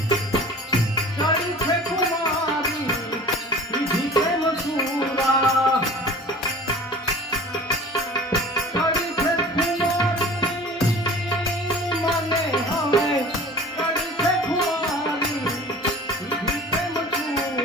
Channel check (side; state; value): both; normal; correlation 0.42